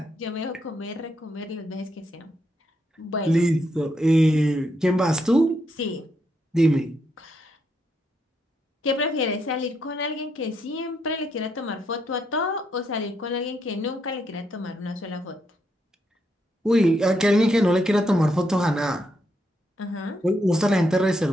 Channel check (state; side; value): normal; both; correlation 0.78